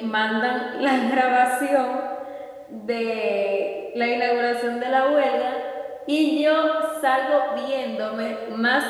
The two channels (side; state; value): both; identical; correlation 1.00